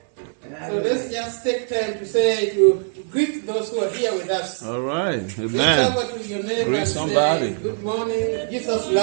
So let's just take time to say, to greet those who are here with us. All right. Reach Amen. over to your neighbor Greet and somebody. say, "Good morning, Jesus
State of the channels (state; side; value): silent; left; digital silence